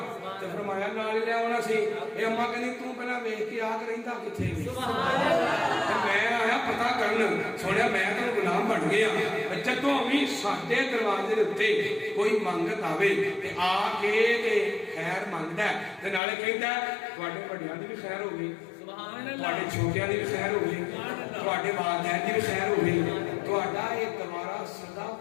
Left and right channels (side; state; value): right; drops out; at 16.2 s